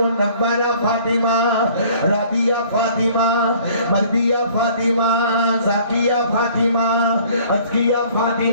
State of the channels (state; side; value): inverted; both; correlation -0.54